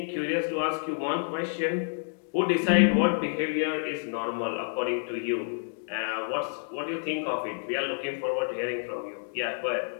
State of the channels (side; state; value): right; silent; digital silence